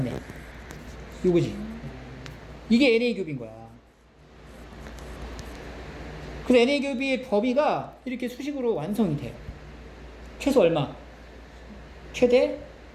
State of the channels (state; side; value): identical; both; correlation 1.00